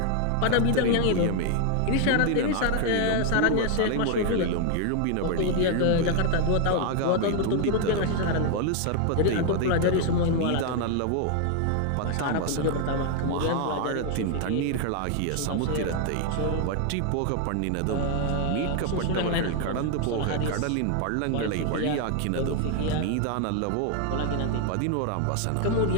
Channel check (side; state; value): both; different; correlation 0.00